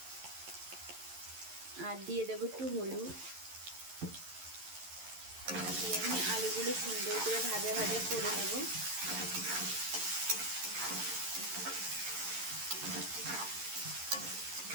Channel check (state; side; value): late; left; 11 ms